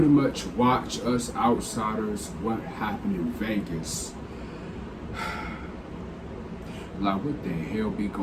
much watch us outsiders what happened in Vegas. Like, what the hell be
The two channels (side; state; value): both; identical; correlation 1.00